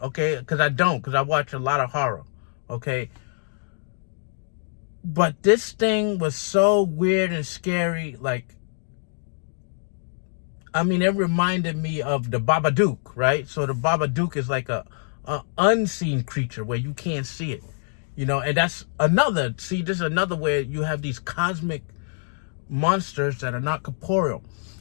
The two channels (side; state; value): right; silent; digital silence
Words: okay? Because I watch a lot of horror, okay? But this thing was so weird and scary, like, I mean, it reminded me of the Babadook, right? So the Babadook is like a unseen creature where you can't see it, and that's this is another where you have these cosmic monsters that are not corporeal.